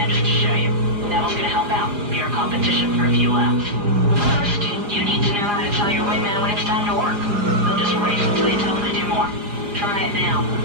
just to show you. Neville's gonna help out, be your competition for a few laps. First, you need to know how to tell your wingman when it's time to work. They'll just race until you tell them to do more. Try it now.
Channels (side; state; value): left; late; 4.9 ms